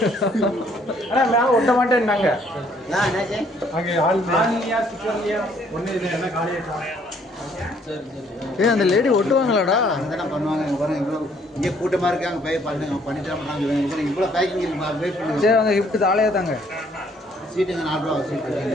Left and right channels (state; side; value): normal; both; correlation 0.64